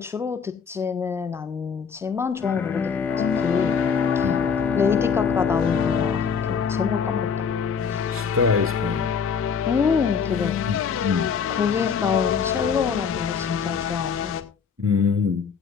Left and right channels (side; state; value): right; quieter; 6.4 dB